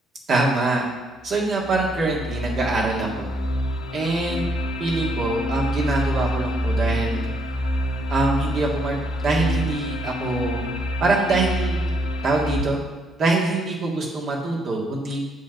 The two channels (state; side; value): normal; both; correlation 0.72